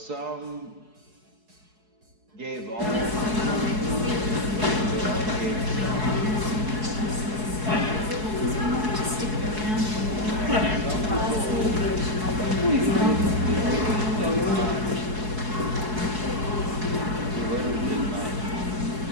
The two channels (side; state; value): left; late; 4.7 ms